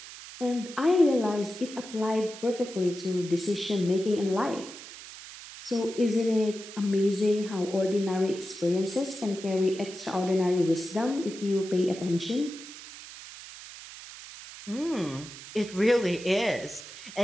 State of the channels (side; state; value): right; noise; hiss, 14 dB below the sound